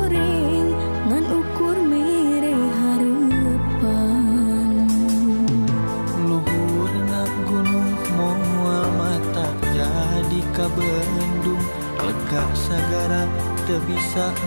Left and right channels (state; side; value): inverted; both; correlation -1.00